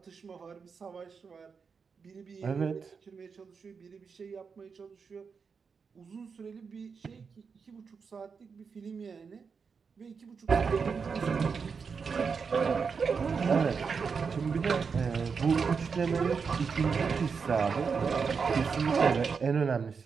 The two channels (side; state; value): left; quieter; 5.6 dB